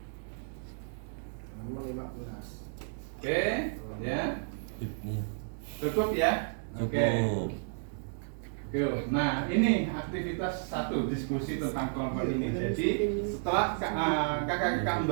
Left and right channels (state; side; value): silent; left; digital silence